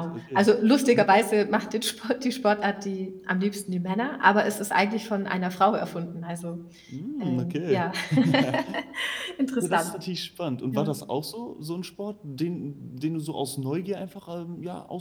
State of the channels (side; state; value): both; identical; correlation 1.00